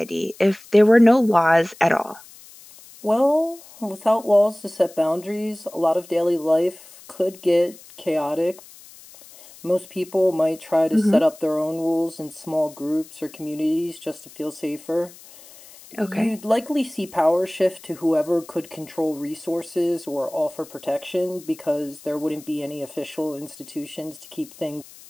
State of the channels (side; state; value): left; noise; hiss, 21 dB below the sound